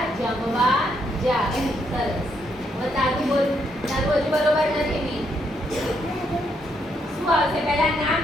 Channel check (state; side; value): normal; both; correlation 0.75